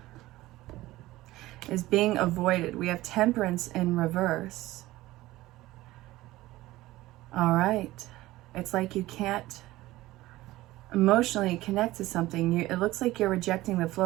is being avoided. We have temperance in reverse. All right. It's like you can't emotionally connect to something. It looks like you're rejecting the flow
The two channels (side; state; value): left; quieter; 17.4 dB